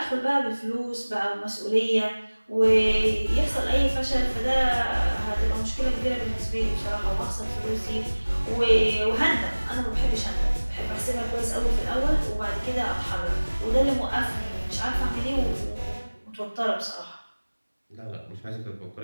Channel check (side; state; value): both; inverted; correlation -1.00